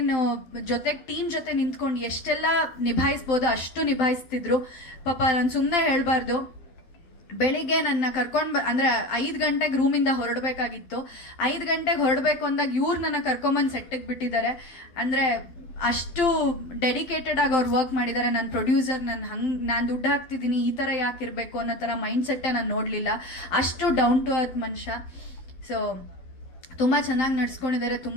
ಜೊತೆಗೆ ಟೀಮ್ ಜೊತೆ ನಿಂತ್ಕೊಂಡು ಎಷ್ಟೆಲ್ಲ ನಿಭಾಯಿಸ್ಬೋದು ಅಷ್ಟು ನಿಭಾಯಿಸ್ತಿದ್ರು. ಪಾಪ ನಾನು ಸುಮ್ಮನೆ ಹೇಳಬಾರ್ದು, ಬೆಳಿಗ್ಗೆ ನನ್ನ ಕರ್ಕೊಂಡು ಅಂದರೆ 5 ಗಂಟೆಗೆ ರೂಮಿಂದ ಹೊರಡಬೇಕಾಗಿತ್ತು. 5 ಗಂಟೆಗೆ ಹೊರಡಬೇಕು ಅಂದಾಗ ಇವ್ರು ನನ್ನ ಕರ್ಕೊಂಬಂದು ಸೆಟ್ಟಿಗೆ ಬಿಟ್ಟಿದ್ದಾರೆ. ಅಂದರೆ ಅಷ್ಟು ಡೆಡಿಕೇಟೆಡ್ ಆಗಿ ಅವ್ರು ವರ್ಕ್ ಮಾಡಿದ್ದಾರೆ. ನನ್ನ ಪ್ರೊಡ್ಯೂಸರ್ ನಾನು ದುಡ್ಡು ಹಾಕ್ತಿದ್ದೀನಿ ಈ ಥರ ಯಾಕೆ ಇರಬೇಕು ಅನ್ನೋ ಥರ ಮೈಂಡ್ ಸೆಟ್ಟೇ ನಾನು ನೋಡಲಿಲ್ಲ. ಅಷ್ಟು ಡೌನ್ ಟು ಅರ್ತ್ ಮನುಷ್ಯ. ಸೊ ತುಂಬ ಚೆನ್ನಾಗಿ ನಡ್ಸ್ಕೊಂಡಿದ್ದಾರೆ,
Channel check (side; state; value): right; late; 12 ms